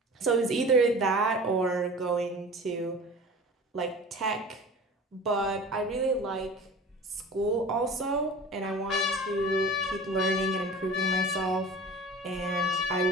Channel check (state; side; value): normal; both; correlation 0.39